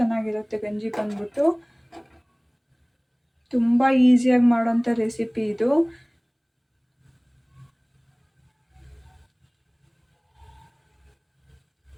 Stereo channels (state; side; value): identical; both; correlation 1.00